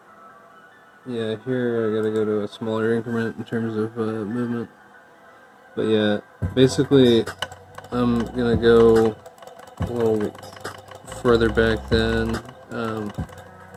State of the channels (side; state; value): both; identical; correlation 1.00